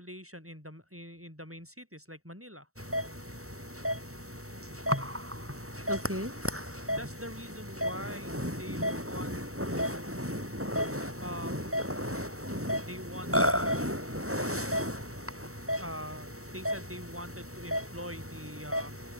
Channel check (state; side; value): late; left; 0.64 ms